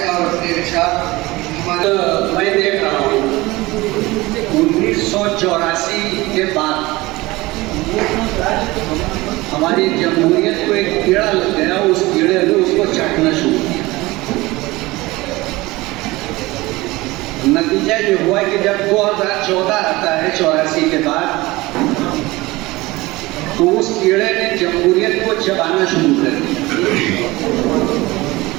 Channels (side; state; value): left; quieter; 20.7 dB